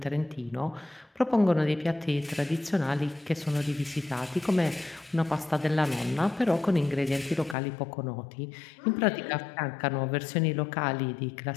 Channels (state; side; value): drops out; right; at 7.6 s